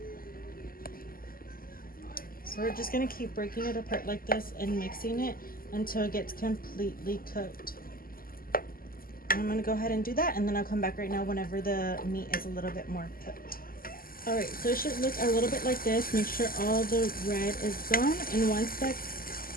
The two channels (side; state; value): right; late; 0.42 ms